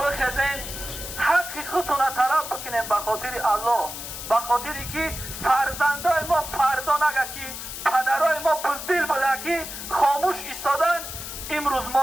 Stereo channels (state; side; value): noise; left; hiss, 8 dB below the sound